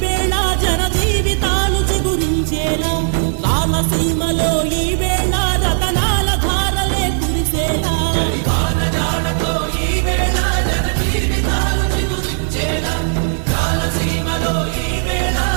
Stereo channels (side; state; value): left; silent; 68 dB below the other